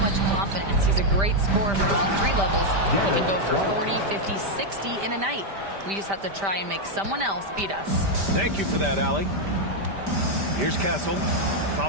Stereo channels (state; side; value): late; left; 5.1 ms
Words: confidence. He's a great scorer from all 3 levels. He can go for 40, 50, 60 in a night. We just have to try and make someone else beat us. Thank you for that, Allie. Here's Castle,